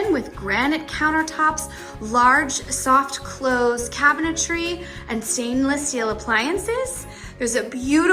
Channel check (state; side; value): identical; both; correlation 1.00